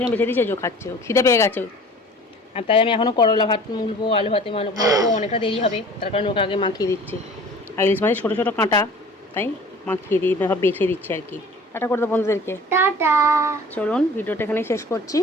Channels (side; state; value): both; normal; correlation 0.46